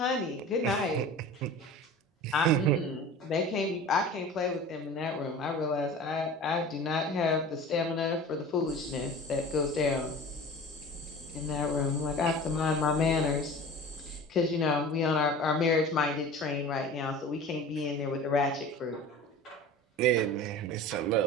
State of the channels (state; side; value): normal; both; correlation 0.38